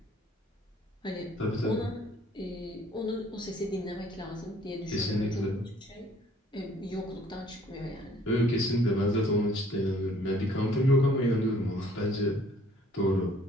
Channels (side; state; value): both; normal; correlation 0.58